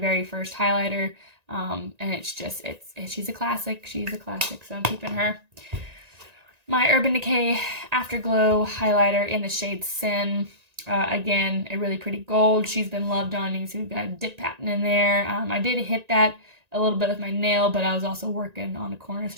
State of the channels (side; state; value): left; late; 1.9 ms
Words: first highlighter, and she's a classic. She's a classic, so I'm keeping her. My Urban Decay Afterglow highlighter in the shade Sin. Again, a really pretty gold. She's been loved on. You can see we've got a dip pattern in there. I did hit that a little bit with my nail, but I was also working on a corner, so